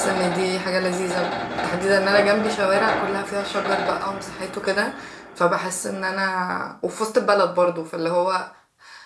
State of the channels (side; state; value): both; identical; correlation 1.00